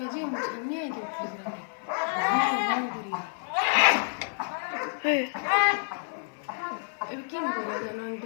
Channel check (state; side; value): silent; right; 56 dB below the other